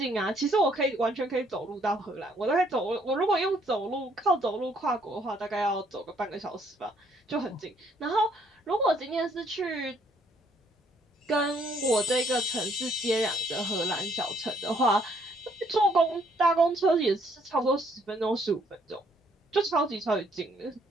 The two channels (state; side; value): normal; both; correlation 0.67